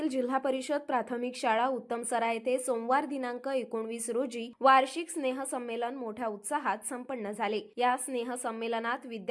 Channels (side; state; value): both; identical; correlation 1.00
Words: जिल्हा परिषद प्राथमिक शाळा उत्तमसरा येथे सोमवार दिनांक 19 रोजी वार्षिक स्नेह संमेलन मोठ्या उत्साहात संपन्न झाले। या स्नेह संमेलनात